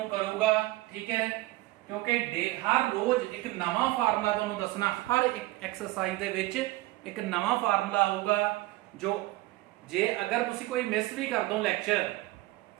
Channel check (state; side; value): quieter; left; 18.9 dB